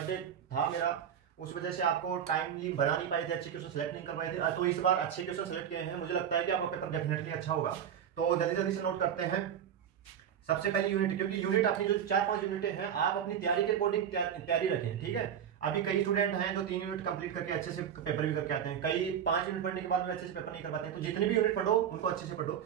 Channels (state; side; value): quieter; left; 8.9 dB